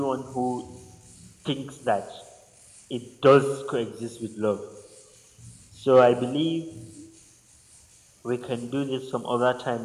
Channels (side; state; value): both; identical; correlation 1.00